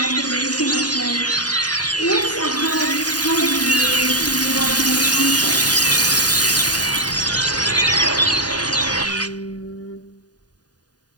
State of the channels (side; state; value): right; late; 0.68 ms